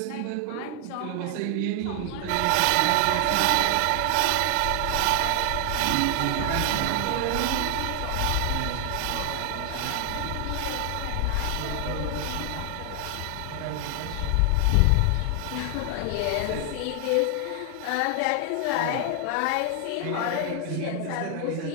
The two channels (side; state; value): both; different; correlation 0.00